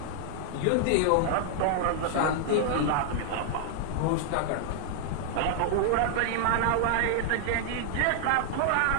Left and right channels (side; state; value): both; different; correlation 0.00